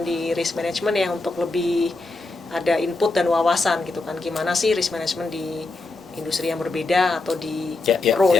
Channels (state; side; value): quieter; right; 3.2 dB